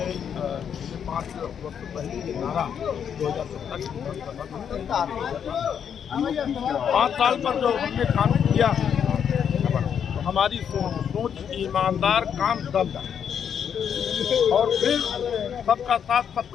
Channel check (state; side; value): quieter; right; 8.0 dB